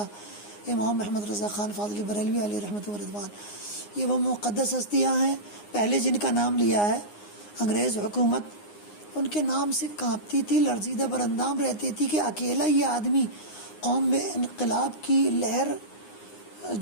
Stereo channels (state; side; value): late; right; 9.7 ms